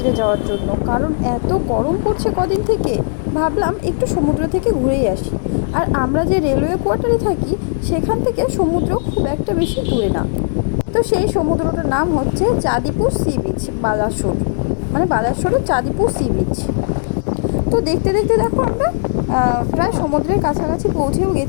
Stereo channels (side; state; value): right; silent; digital silence